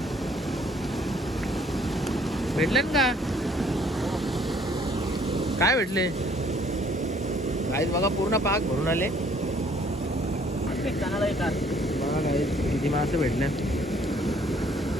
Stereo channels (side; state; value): both; normal; correlation 0.61